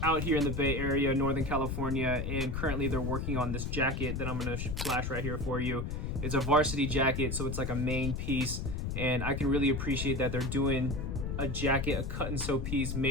out here in the Bay Area, Northern California, and currently they're working on this jacket that I'm gonna flash right here for you. It's a varsity jacket, so it's like a main piece, and I can really appreciate that they're doing a jacket, a cut and sew piece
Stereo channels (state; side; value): noise; left; rumble, 3 dB below the sound